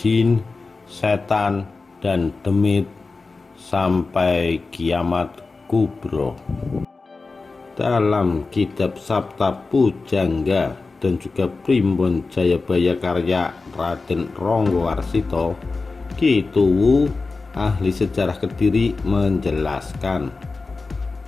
setan, dan demit sampai kiamat kubro. Dalam kitab Sabta Pujangga dan juga Primbon Jayabaya karya Raden Ronggowarsito, Ki Tuwu, ahli sejarah Kediri, menjelaskan,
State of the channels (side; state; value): right; quieter; 3.9 dB